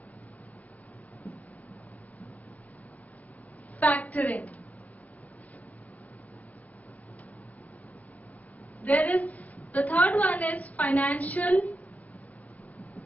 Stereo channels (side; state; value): right; late; 0.071 ms